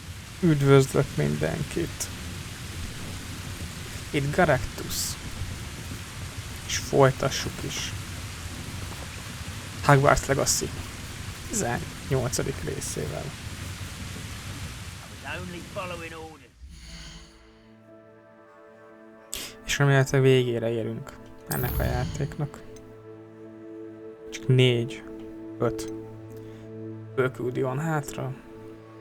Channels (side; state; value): both; identical; correlation 1.00